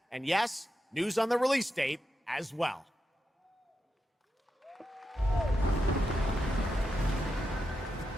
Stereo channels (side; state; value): both; normal; correlation 0.87